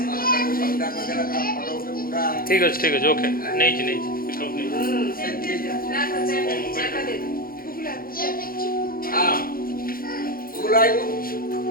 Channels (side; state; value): right; late; 0.42 ms